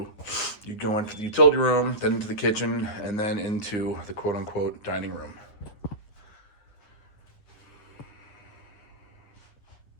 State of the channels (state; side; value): late; right; 9.7 ms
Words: you go into the utility room, then into the kitchen, and then into the quote-unquote dining room.